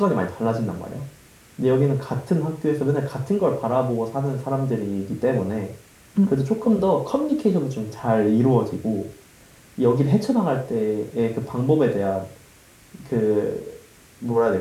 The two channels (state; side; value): identical; both; correlation 1.00